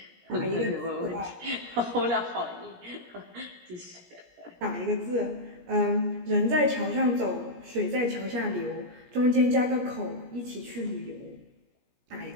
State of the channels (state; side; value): late; left; 17 ms